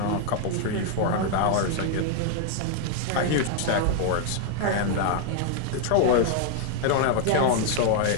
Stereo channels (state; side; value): different; both; correlation 0.00